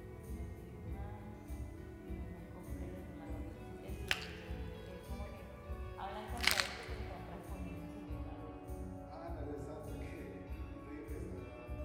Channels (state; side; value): identical; both; correlation 1.00